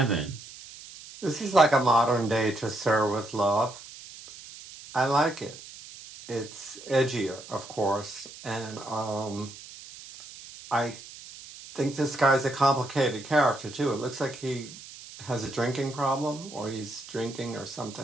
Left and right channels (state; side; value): noise; right; hiss, 16 dB below the sound